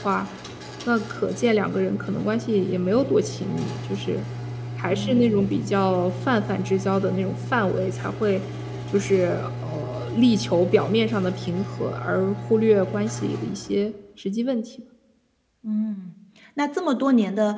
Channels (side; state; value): both; identical; correlation 1.00